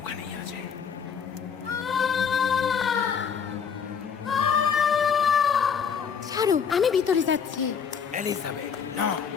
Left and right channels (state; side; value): quieter; right; 6.8 dB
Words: ওখানেই আছে। ছাড়ো, আমি ভিতরে যাচ্ছি। এলিজাবেথ, না।